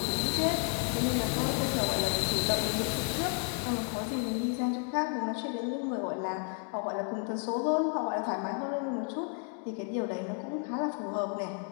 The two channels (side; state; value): right; quieter; 37.3 dB